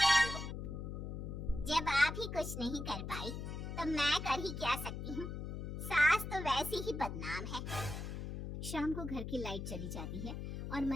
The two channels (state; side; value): noise; left; hum, 6 dB below the sound